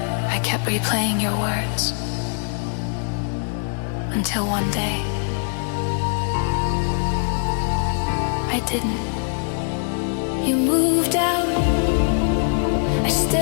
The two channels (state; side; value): silent; right; digital silence